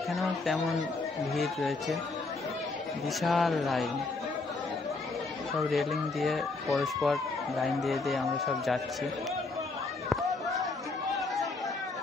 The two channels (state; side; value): quieter; right; 3.6 dB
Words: তেমন ভিড় রয়েছে, বিশাল লাইন। সব রেলিং দিয়ে পরস্পর লাইন দিয়ে দিয়ে আমরা সব যাচ্ছি।